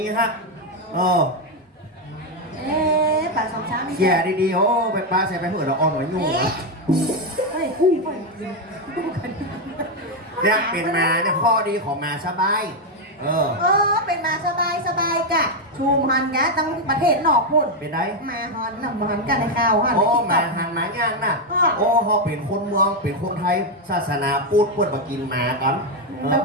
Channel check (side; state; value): both; normal; correlation 0.04